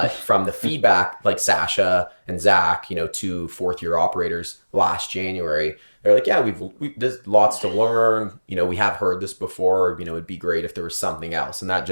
from the feedback, like Sasha and Zach, you know, 2 4th-year operators last January. They're like, yeah, there's lots to learn. You know, we have heard this before. You know, it'd be great if there was something else. And that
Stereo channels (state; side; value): inverted; both; correlation -1.00